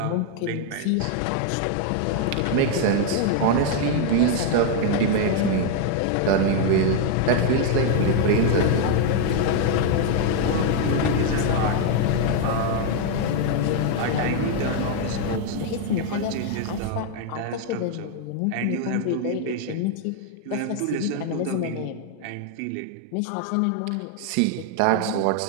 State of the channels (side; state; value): both; different; correlation 0.01